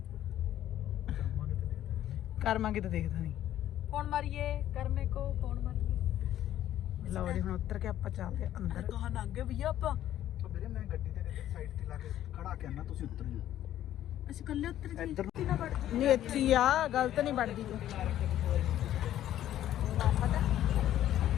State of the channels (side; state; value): right; quieter; 12.2 dB